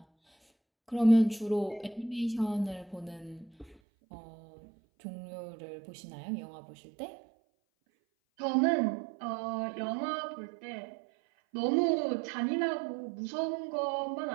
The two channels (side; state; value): left; drops out; at 3.8 s